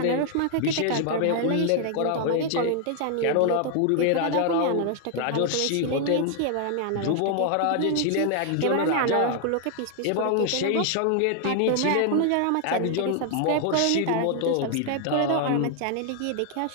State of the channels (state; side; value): different; both; correlation 0.00